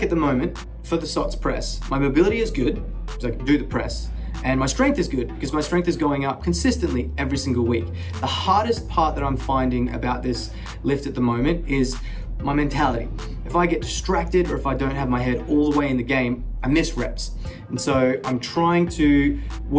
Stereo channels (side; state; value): both; identical; correlation 1.00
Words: at the moment for the SOTS press, my mobility is good because I can do the press, and my strength is good because my strength is going up consistently every single week. The hardest part that I'm finding about this lift at the moment is my mentality. If I get distracted or if I don't have my head all the way in the game, I miss reps. And so I'm trying to